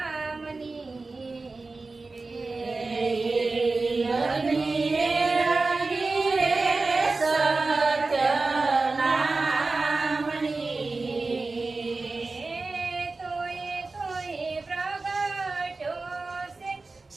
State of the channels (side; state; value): left; quieter; 3.7 dB